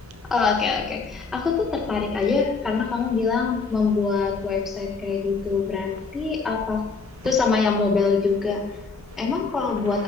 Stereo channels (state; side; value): quieter; right; 4.5 dB